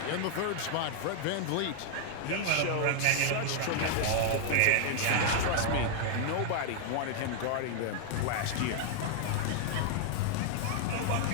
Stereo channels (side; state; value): both; different; correlation 0.00